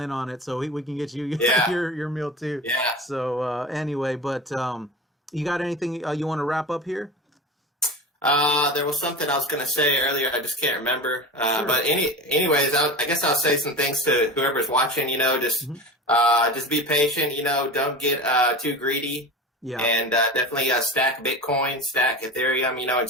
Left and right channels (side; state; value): both; normal; correlation 0.30